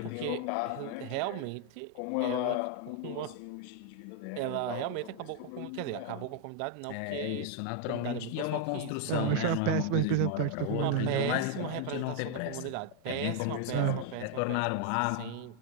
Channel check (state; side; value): different; both; correlation 0.00